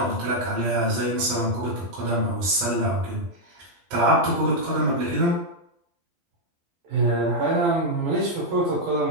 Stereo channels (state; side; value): late; left; 12 ms